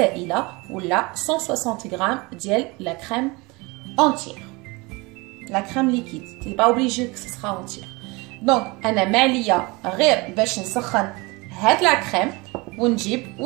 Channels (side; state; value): left; quieter; 25.4 dB